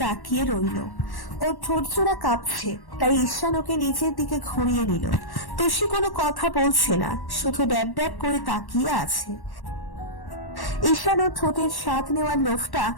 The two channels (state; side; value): late; right; 1.1 ms